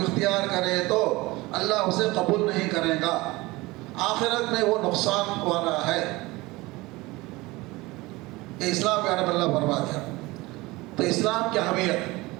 اختیار کرے تو اللہ اسے قبول نہیں کرے گا، آخرت میں وہ نقصان والا ہے. یہ اسلام کے بارے میں اللہ فرما دیا. تو اسلام کی اہمیت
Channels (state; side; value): quieter; left; 21.4 dB